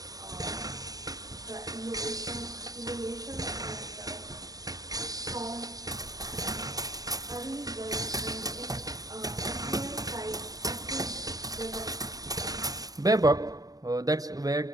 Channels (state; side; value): late; left; 0.18 ms